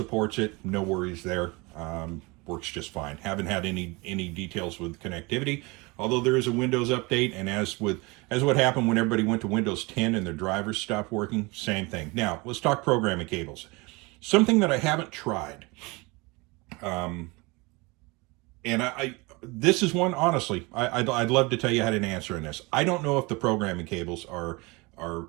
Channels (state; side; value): quieter; left; 25.7 dB